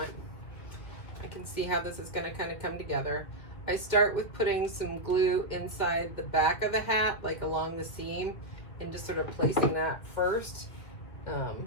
I can see how this is going to kind of come together. I start with putting some glue inside the back of the hat, like along the seam, and just sort of placing that first.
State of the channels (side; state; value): right; late; 2.0 ms